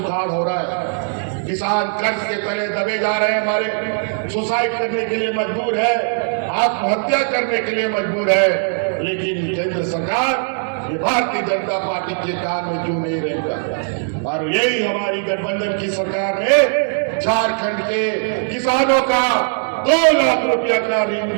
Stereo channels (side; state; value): left; silent; 62 dB below the other